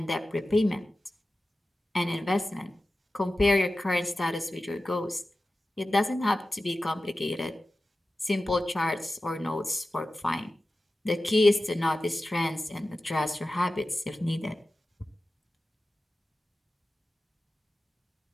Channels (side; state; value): both; normal; correlation 0.95